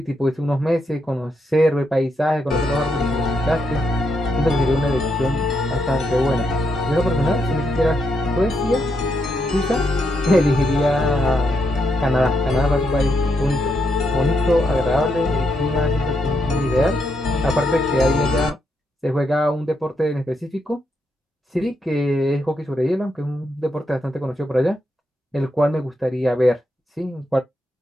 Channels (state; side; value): normal; both; correlation 0.80